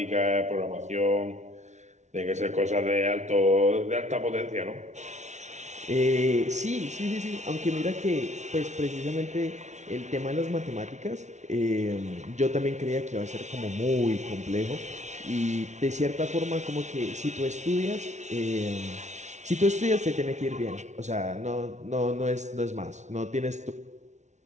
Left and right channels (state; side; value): late; left; 0.33 ms